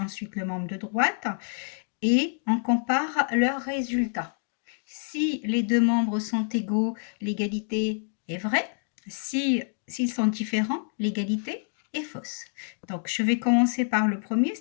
le membre de droite, et on compare leurs résultats. Si les deux membres sont égaux, l'égalité est vraie. S'ils sont différents, l'égalité est fausse. Donc, je vais commencer par le premier,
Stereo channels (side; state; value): right; silent; digital silence